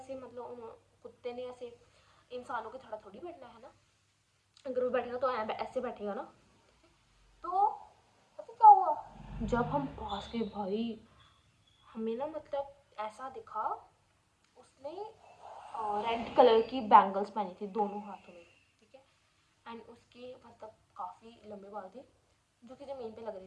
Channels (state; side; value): identical; both; correlation 1.00